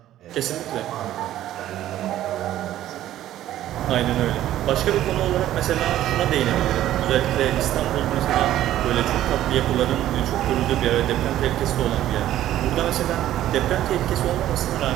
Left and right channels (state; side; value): quieter; left; 13.0 dB